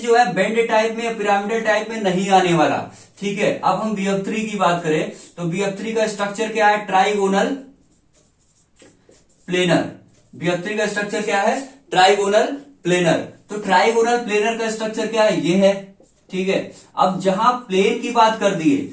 है बेंड टाइप में या पिरामिडल टाइप में नहीं आने वाला, ठीक है। अब हम BF3 की बात करें तो BF3 का स्ट्रक्चर क्या है, ट्राइगोनल प्लेनर। BF3 का स्ट्रक्चर क्या है, ट्राइगोनल प्लेनर। तो ट्राइगोनल प्लेनर का स्ट्रक्चर क्या है, ये है, ठीक है। अब जहां प्लेन की बात कर दिए,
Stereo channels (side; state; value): both; identical; correlation 1.00